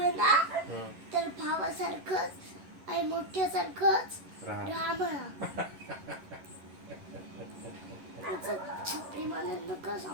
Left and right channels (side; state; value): left; late; 11 ms